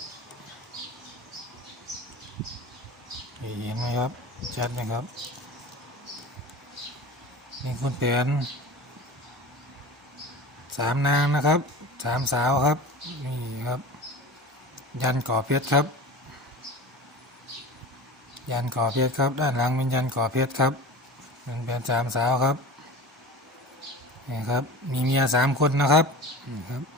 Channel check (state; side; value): normal; both; correlation 0.33